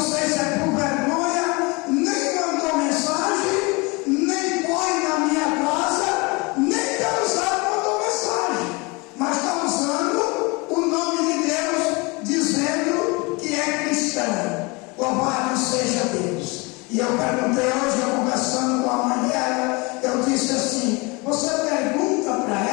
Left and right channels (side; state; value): right; quieter; 27.2 dB